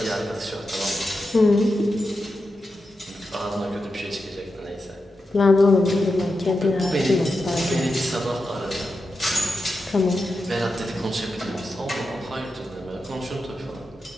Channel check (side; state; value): both; normal; correlation 0.89